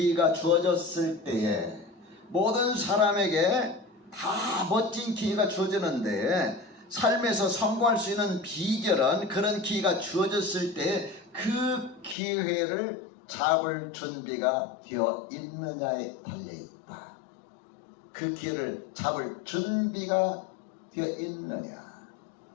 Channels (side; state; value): right; drops out; at 12.2 s